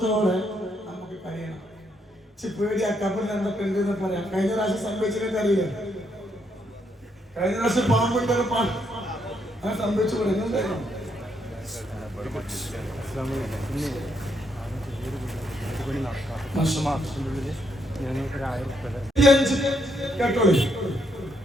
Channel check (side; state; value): both; normal; correlation 0.75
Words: നമുക്ക് കഴിയണം. പേടി ആ ഖബറിൽ എന്തൊക്കെ ഉണ്ടെന്ന് പറയാം. കഴിഞ്ഞ പ്രാവശ്യം സംഭവിച്ചതൊക്കെ അറിയില്ല. കഴിഞ്ഞ പ്രാവശ്യം പാമ്പുണ്ടെന്ന് അങ്ങനെ സംഭവിച്ചു പറയുന്നുണ്ടായിരുന്നു. കേട്ടോളൂ.